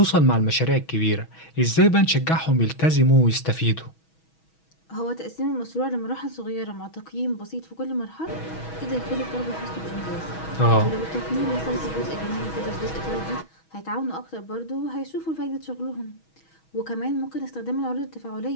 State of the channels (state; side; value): late; right; 6.2 ms